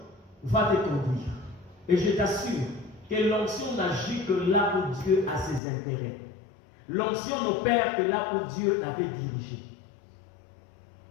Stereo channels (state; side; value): drops out; right; at 5.6 s